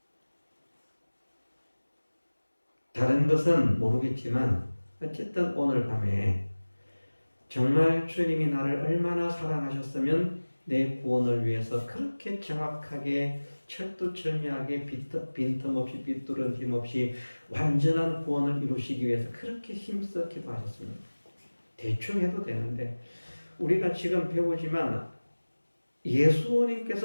다른 것은 모르겠지만 어쨌든 오늘 밤에 정말 주님이 나를 얼마나 사랑하셨으면 내 구원을 위해서 그렇게 정확하게 철두철미하게 빈틈없이 삐뚤어짐 없이 완전한 구원을 이루시기 위해서 그렇게 힘써 기도하셨습니다. 대충 해도 되는데 우리가 지금 배우지만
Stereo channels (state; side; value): inverted; both; correlation -1.00